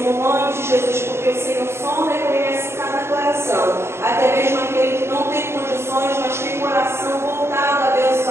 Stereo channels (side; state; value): left; late; 0.12 ms